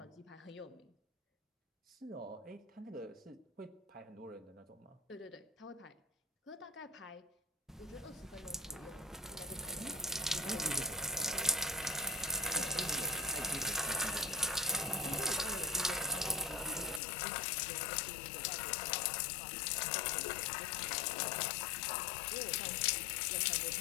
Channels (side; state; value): right; drops out; at 17.0 s